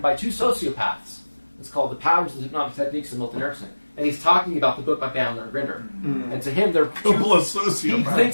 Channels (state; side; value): inverted; both; correlation -1.00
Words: by two sociopaths. It's called The Patterns and Hypnotic Techniques of Milton Erickson. And he's talking about the book by Bandler and Grinder. And to him, they're Couple of sociopaths. he